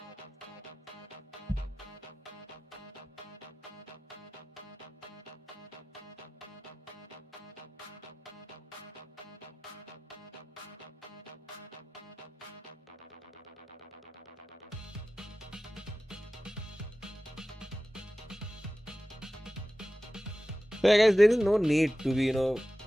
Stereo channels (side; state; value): both; normal; correlation 0.95